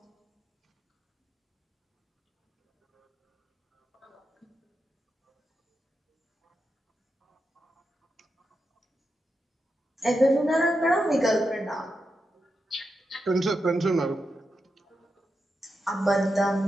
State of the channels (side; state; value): both; normal; correlation 0.87